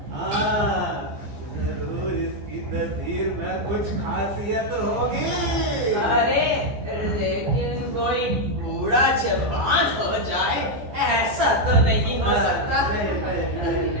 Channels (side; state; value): left; late; 15 ms